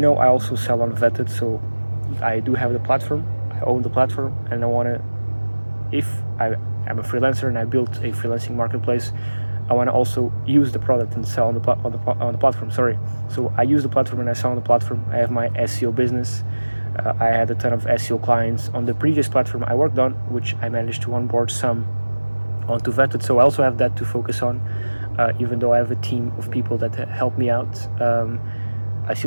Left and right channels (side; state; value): both; inverted; correlation -1.00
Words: know, I also sell on Vettedd, so I do have the platform. I own the platform, and if I'm a freelancer and I built a freelancing marketplace, I want to also use the product and sell on the platform. So I use the platform and I sell on the platform. I have my SEO business. I had a ton of SEO clients on the previous platform I worked on, which I managed to onboard some onto Vettedd. So I also have that to focus on. Even though I have a team of people that help me out, I